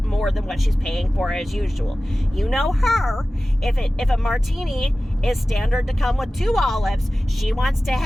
more than what she's paying for as usual. You know her. If a martini is standard to come with 2 olives, she wants to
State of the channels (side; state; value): both; normal; correlation 0.96